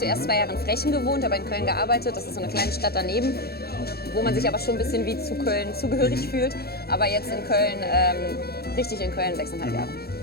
2 Jahre in Frechen gewohnt, aber in Köln gearbeitet. Das ist so eine kleine Stadt daneben, wo man sich aber schon ein bisschen wie zu Köln zugehörig fühlt. Aber jetzt in Köln, richtig in Köln, 6,5 Jahre.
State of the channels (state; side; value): late; right; 0.46 ms